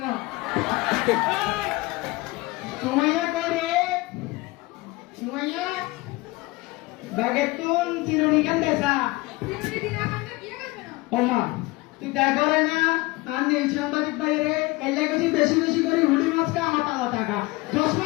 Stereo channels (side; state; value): right; quieter; 22.0 dB